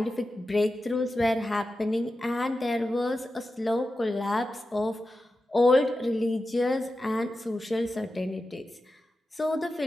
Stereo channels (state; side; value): normal; both; correlation 0.92